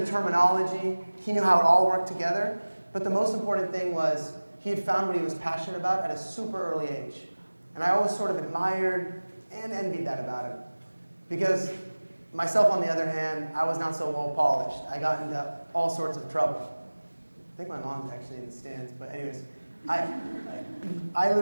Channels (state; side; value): inverted; both; correlation -1.00